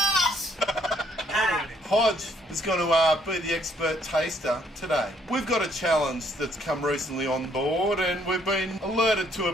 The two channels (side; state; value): both; normal; correlation 0.67